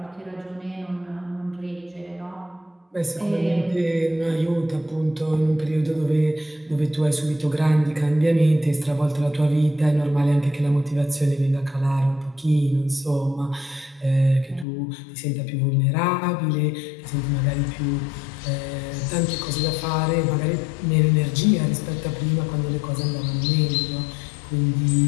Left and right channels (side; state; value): right; drops out; at 14.7 s